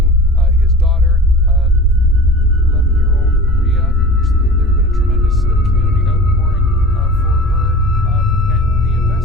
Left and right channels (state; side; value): normal; both; correlation 0.38